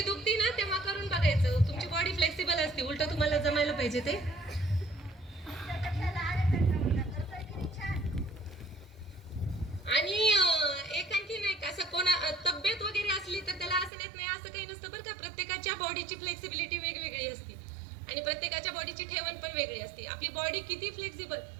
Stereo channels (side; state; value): left; drops out; at 13.9 s